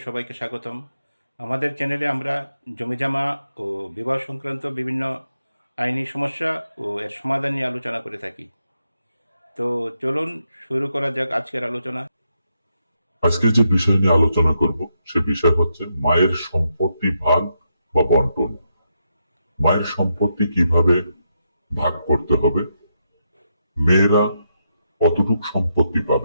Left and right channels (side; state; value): both; inverted; correlation -0.82